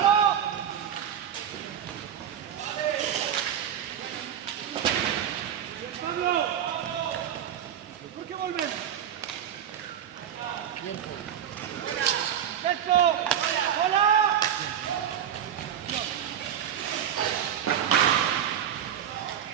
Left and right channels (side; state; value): left; quieter; 9.6 dB